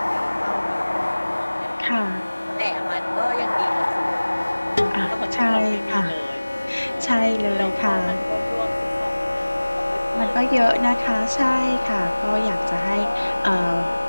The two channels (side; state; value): both; inverted; correlation -1.00